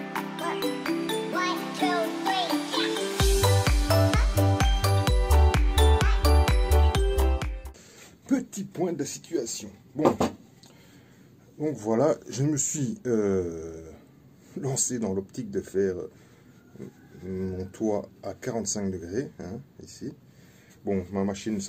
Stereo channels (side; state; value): both; identical; correlation 1.00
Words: 1, 2, 3, Petit point de la situation. Bon, donc voilà, je me suis lancé dans l'optique de faire mon toit à 45 degrés, hein, ici. Bon, ma machine ne